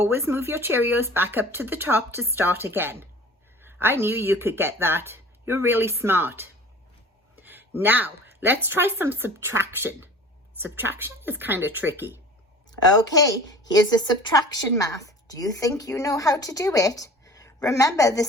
move your Cheerios back up to the top to start again. I knew you could get that. You're really smart. Now, let's try some subtraction. Subtraction is kind of tricky. Okay, here's a subtraction math. Do you think you know how to do it? Remember, the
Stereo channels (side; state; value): both; normal; correlation 0.43